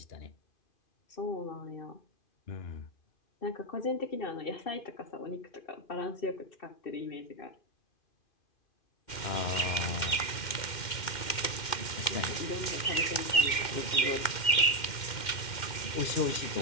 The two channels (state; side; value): late; right; 2.1 ms